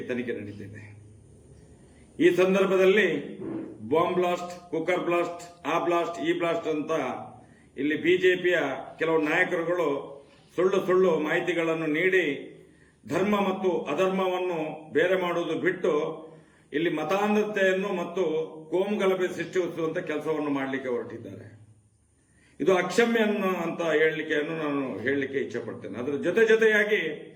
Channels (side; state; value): both; identical; correlation 1.00